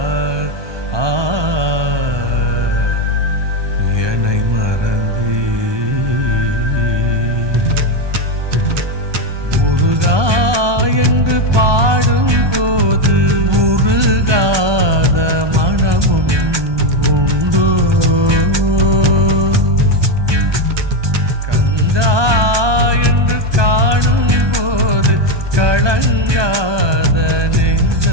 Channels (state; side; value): late; left; 1.2 ms